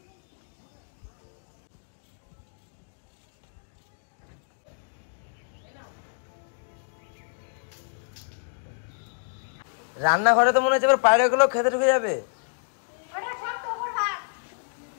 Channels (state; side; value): silent; right; digital silence